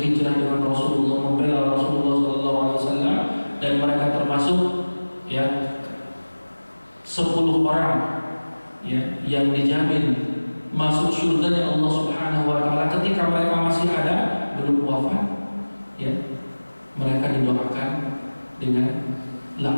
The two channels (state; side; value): inverted; both; correlation -1.00